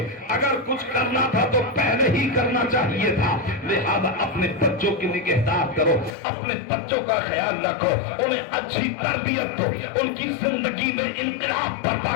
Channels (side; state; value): right; drops out; at 6.2 s